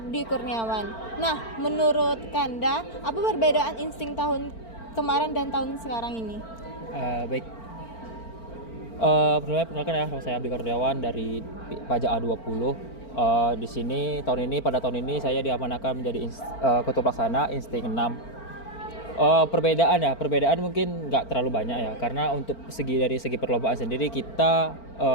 Kurniawan. Nah, menurut Kanda, apa perbedaan Insting tahun kemarin dan tahun sekarang ini? Baik. Perkenalkan ya, nama saya Abdi Kurniawan dari Pajak A20. Di sini pada tahun ini saya diamanahkan menjadi Ketua Pelaksana Insting 6. Perbedaan mungkin nggak terlalu banyak ya, karena untuk dari segi perlombaan sendiri kita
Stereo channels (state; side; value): late; right; 4.4 ms